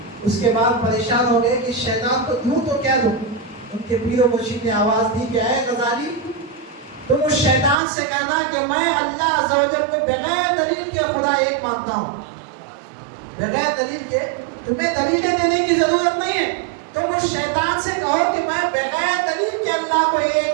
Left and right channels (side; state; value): left; drops out; at 7.8 s